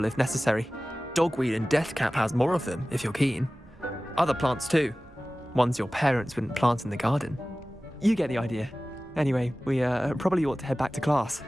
if necessary. Dogweed and deathcap has more of them, if you're keen. Other plants too. Ones your parents wouldn't plant in the garden. You get the idea. Anyway, we probably ought to head back to class.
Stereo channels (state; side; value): normal; both; correlation 0.97